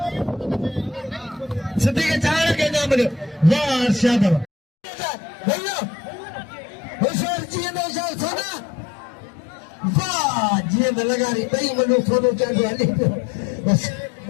सिद्धि के चार के नाम ले वाह अर्शद भैया होशियार जी ने सोना वाह जींद लगारी बई मनो सोनो चांदो हली जो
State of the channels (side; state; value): right; drops out; at 4.5 s